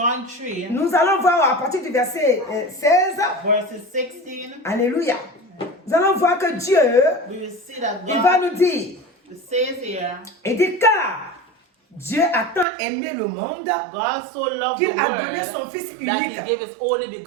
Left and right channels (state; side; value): drops out; left; at 12.7 s